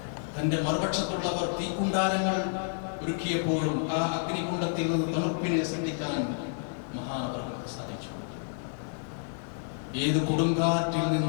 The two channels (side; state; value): right; silent; digital silence